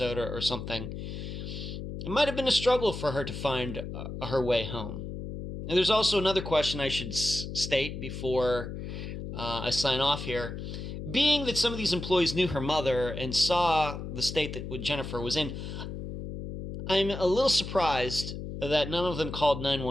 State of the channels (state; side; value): noise; left; hum, 7 dB below the sound